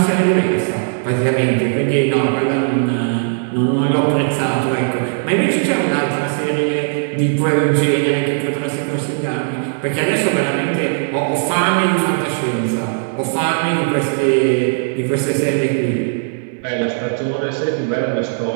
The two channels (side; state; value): left; silent; 62 dB below the other